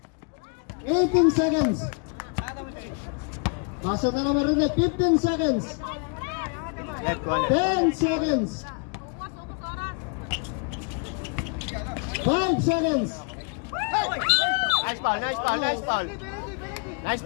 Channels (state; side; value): quieter; right; 36.3 dB